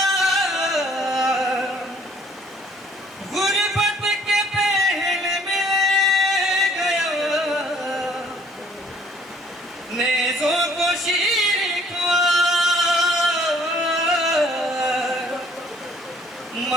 गुर्बत के पहले मिल गया नेज़ों को शीर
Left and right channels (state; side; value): normal; both; correlation 0.60